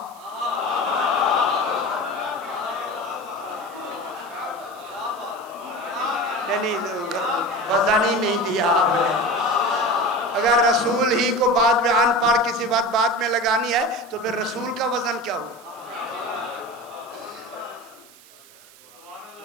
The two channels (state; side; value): noise; right; hiss, 23 dB below the sound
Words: नहीं, वजन ही नहीं दिया आपने। अगर रसूल ही को बाद में अनपढ़ किसी बात बाद में लगानी है तो फिर रसूल का वजन क्या हुआ?